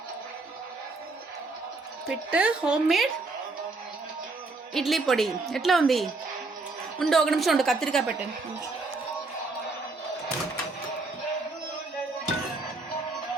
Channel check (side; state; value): left; quieter; 3.5 dB